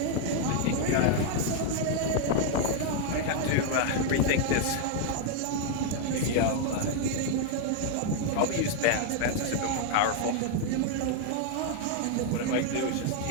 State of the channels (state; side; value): different; both; correlation 0.00